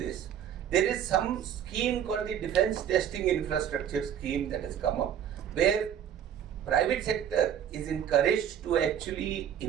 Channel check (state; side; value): quieter; left; 9.5 dB